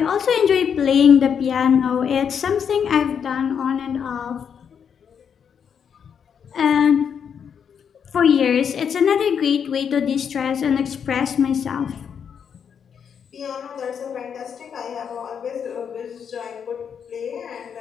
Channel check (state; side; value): quieter; right; 7.4 dB